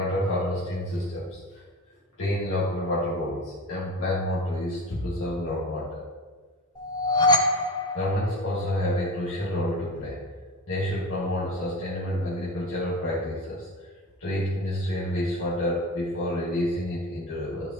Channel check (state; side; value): normal; both; correlation 0.28